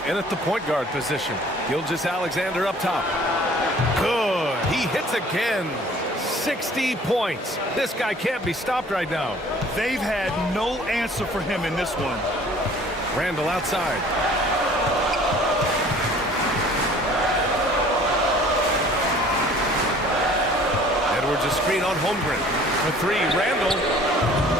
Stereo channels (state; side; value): normal; both; correlation 0.52